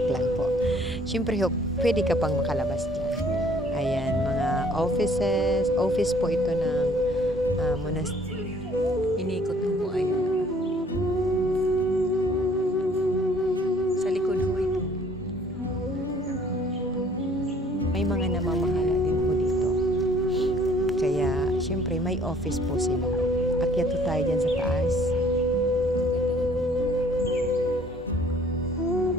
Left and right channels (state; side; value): normal; both; correlation 0.58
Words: lang po. Siyempre ho, pwede ka pang makalabas dyan. Ayan, mga office po ito ng monastery. Inikot mo po, ayan. Sa likod ho ito. May mga namamahala din po dito. Kaya, syempre, may office po sila. Akyat po tayo dyan sa taas.